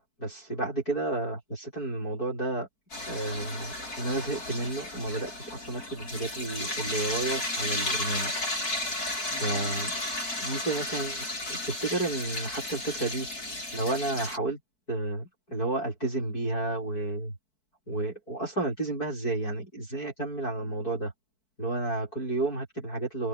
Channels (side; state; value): right; late; 4.6 ms